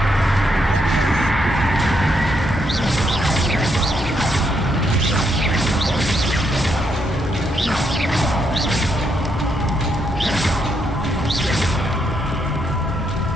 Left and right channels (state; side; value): normal; both; correlation 0.77